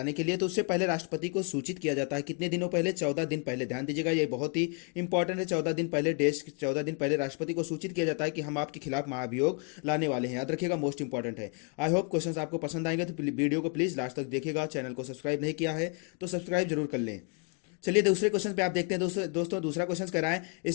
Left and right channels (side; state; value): right; quieter; 33.8 dB